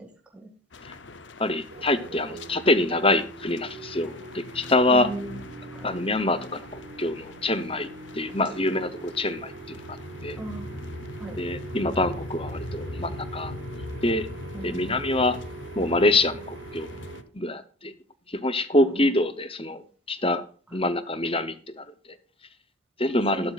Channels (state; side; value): normal; both; correlation 0.38